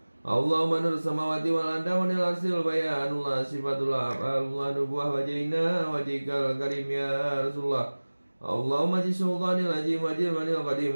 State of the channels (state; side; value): inverted; both; correlation -1.00